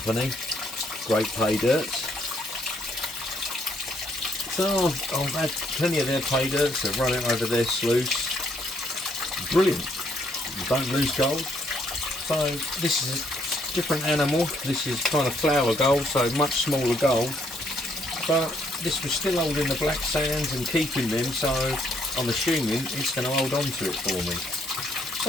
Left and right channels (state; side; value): normal; both; correlation 0.70